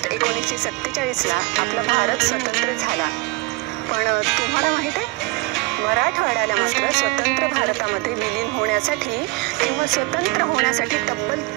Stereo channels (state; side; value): quieter; left; 24.1 dB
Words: 1947ला आपला भारत स्वतंत्र झाला. पण तुम्हाला माहीत आहे, मराठवाड्याला मात्र स्वतंत्र भारतामध्ये विलीन होण्यासाठी किंवा स्वतंत्र होण्यासाठी तब्बल